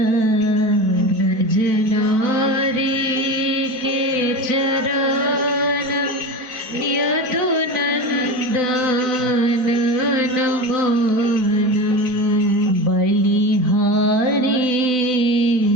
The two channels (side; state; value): left; late; 4.5 ms